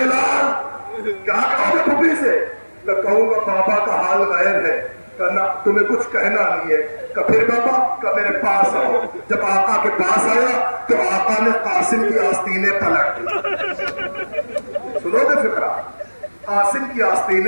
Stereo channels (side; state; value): both; inverted; correlation -1.00